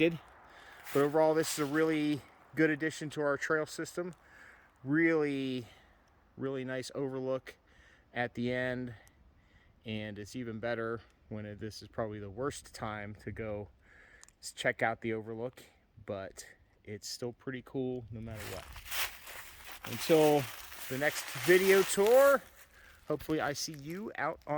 But overall, this is a really good addition to our trail system. Really nice overlook at the end, and it's even better when this is probably the worst time to go check out the overlook, but it's still pretty cool no matter what. Until the next video tour, hopefully I see you out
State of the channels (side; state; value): both; identical; correlation 1.00